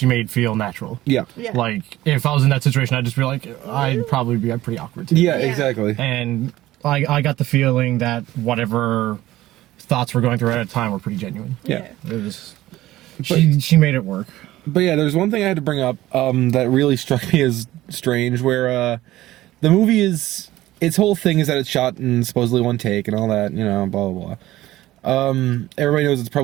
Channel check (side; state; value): left; quieter; 15.8 dB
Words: made feel natural. Yeah. Yeah. Like if I was in that situation, I'd just be like, I'd probably be pretty awkward too. Yeah, Yeah. exactly. And I got the feeling that whatever thoughts were going through at the time were pretty genuine. Yeah. It was. She made it work. But yeah, there's one thing I had to bring up that really struck me as strange, where the movie is, its whole thing is that it's shot in supposedly one take and all that, you know, blah blah blah. Everybody knows it's